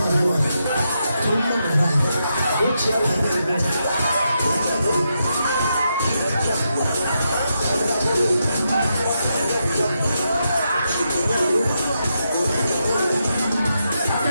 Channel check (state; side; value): inverted; both; correlation -0.83